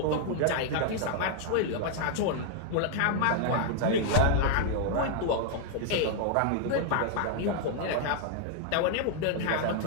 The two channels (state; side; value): different; both; correlation 0.00